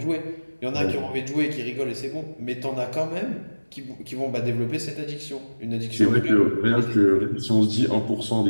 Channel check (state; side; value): inverted; both; correlation -1.00